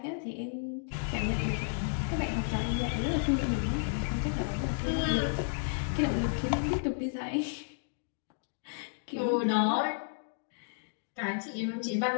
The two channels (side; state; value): right; silent; digital silence